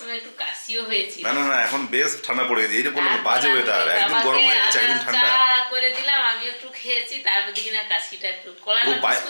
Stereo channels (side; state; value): both; inverted; correlation -1.00